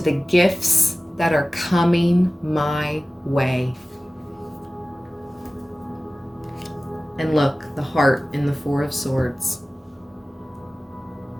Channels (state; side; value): normal; both; correlation 0.97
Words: the gifts that are coming my way. And look, the heart in the 4 of Swords.